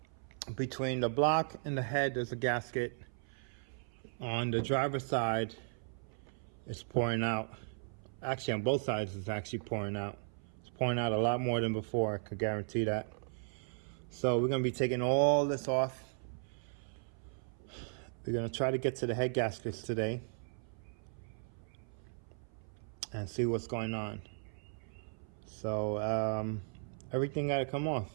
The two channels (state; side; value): silent; left; 53 dB below the other